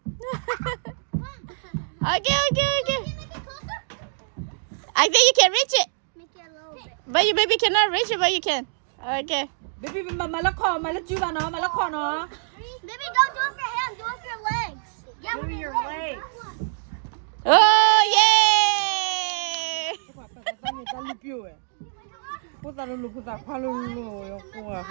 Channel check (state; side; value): silent; left; digital silence